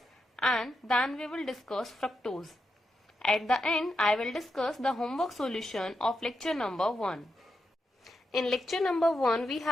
and then we will discuss fructose. At the end, I will discuss the homework solution of lecture number 1. In lecture number 1, we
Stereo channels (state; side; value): normal; both; correlation 0.86